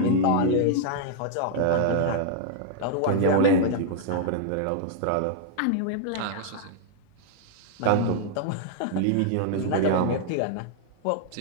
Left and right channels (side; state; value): both; different; correlation -0.01